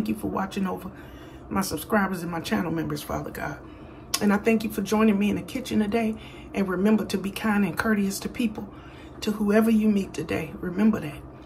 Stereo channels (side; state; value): both; identical; correlation 1.00